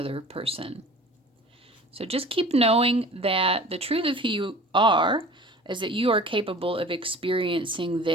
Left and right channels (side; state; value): both; normal; correlation 0.42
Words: person. So just keep knowing that the truth of who you are is that you are capable of experiencing